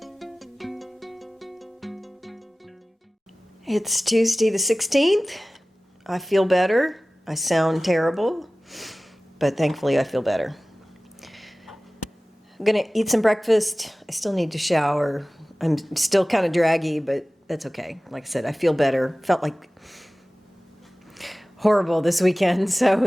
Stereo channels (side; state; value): both; normal; correlation 0.97